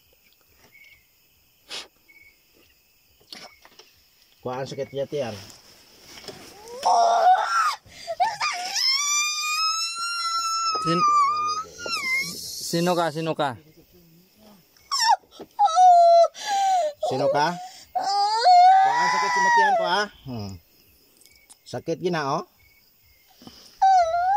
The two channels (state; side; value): identical; both; correlation 1.00